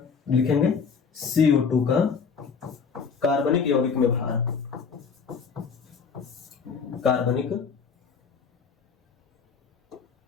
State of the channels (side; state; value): right; quieter; 5.8 dB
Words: लिखेंगे CO2 का कार्बनिक यौगिक में भार, कार्बनिक